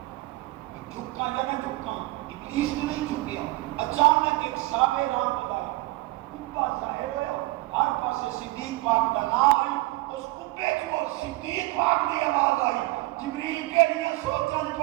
جھکا یا نہ جھکا ابلیس نے نہیں جھکیا اچانک ایک سابے رام خدا کبا ظاہر ہوا ہر پاسے صدیق پاک کا نام آئی اس کبے جو صدیق پاک دی آواز آئی جبریل کے لیے سوچن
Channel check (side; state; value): left; quieter; 20.7 dB